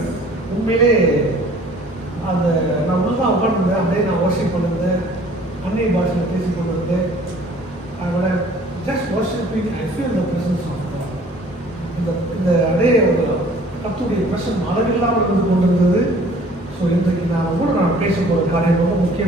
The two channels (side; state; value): both; normal; correlation 0.53